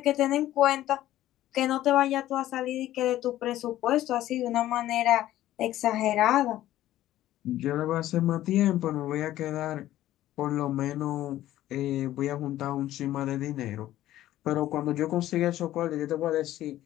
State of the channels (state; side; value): quieter; right; 14.0 dB